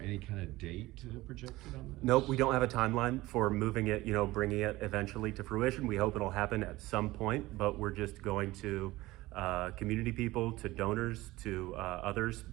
kind of date projected on this? Nope, we don't have a timeline for moving it, bringing it eventually to fruition. We hope it'll happen at some point, but we're just going to community people, to donors, to others,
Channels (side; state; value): left; quieter; 18.7 dB